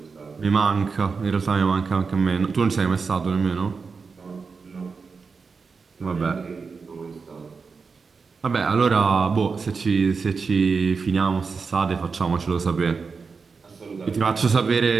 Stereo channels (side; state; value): left; quieter; 5.0 dB